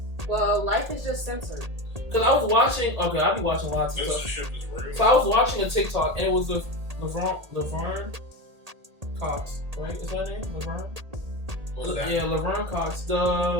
Well, life is just censored. Because I was watching. Okay, I be watching lots of stuff. So I was watching a TikTok and it was the Laverne Cox, right? Is that her name? Laverne? What was that? Yeah, Laverne Cox,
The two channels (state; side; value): late; left; 1.8 ms